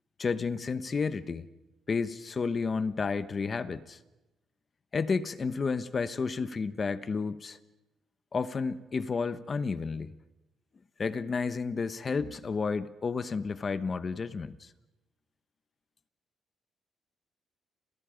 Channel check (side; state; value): right; quieter; 4.5 dB